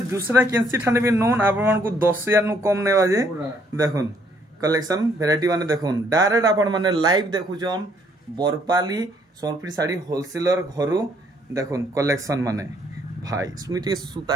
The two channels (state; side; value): normal; both; correlation 0.67